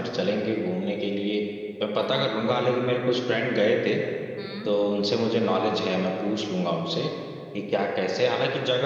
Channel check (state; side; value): identical; both; correlation 1.00